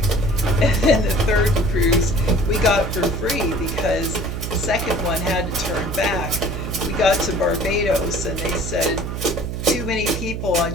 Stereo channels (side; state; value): right; noise; hum, 5 dB below the sound